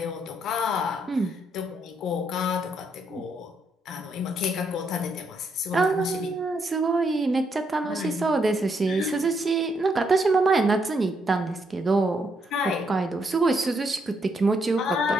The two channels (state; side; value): normal; both; correlation 0.76